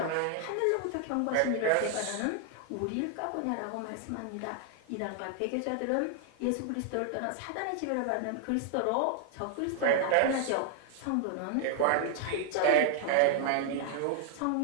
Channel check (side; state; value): both; different; correlation 0.00